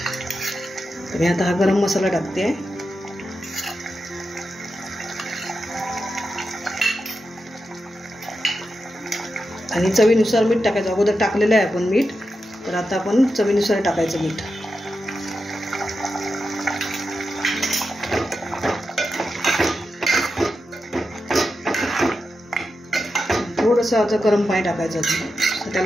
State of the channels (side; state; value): both; normal; correlation 0.89